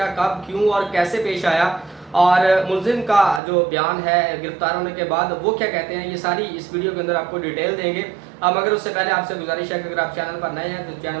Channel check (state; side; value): drops out; left; at 3.4 s